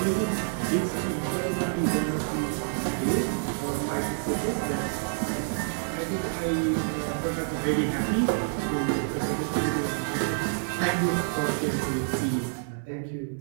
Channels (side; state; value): left; silent; 59 dB below the other